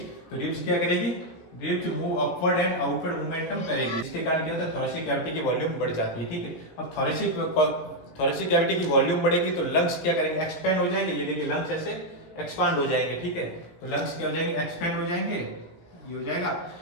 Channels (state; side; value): late; right; 17 ms